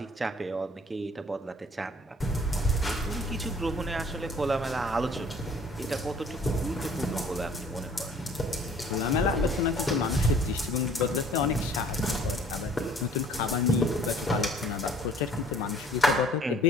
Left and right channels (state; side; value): normal; both; correlation 0.54